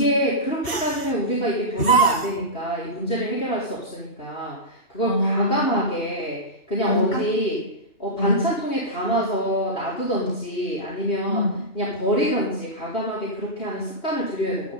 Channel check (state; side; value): late; right; 2.7 ms